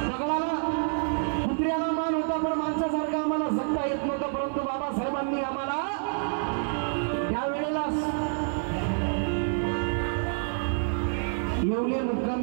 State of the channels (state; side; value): silent; left; 57 dB below the other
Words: दगडाला कुत्र्याला मान होता पण माणसासारखा आम्हाला जगता येत नव्हतं, परंतु बाबासाहेबांनी आम्हाला त्यावेळेला येवले